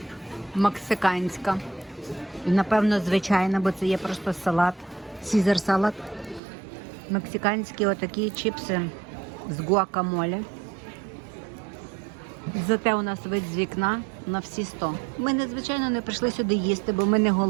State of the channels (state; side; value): drops out; left; at 6.4 s